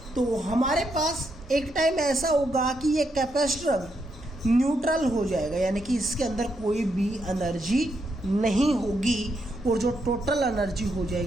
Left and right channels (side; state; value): both; normal; correlation 0.79